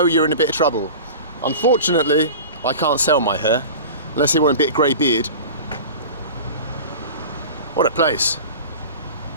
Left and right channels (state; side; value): inverted; both; correlation -0.35